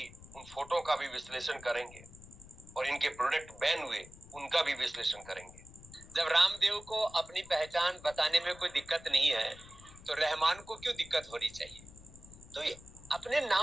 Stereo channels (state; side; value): noise; left; rumble, 19 dB below the sound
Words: उन फोटो का भी विश्लेषण करेंगे और इनके प्रोडक्ट बैन हुए उनका भी विश्लेषण करेंगे। जब रामदेव को अपनी पहचान बताने में कोई दिक्कत नहीं है तो रहमान को क्यों दिक्कत होनी चाहिए? तो ये अपने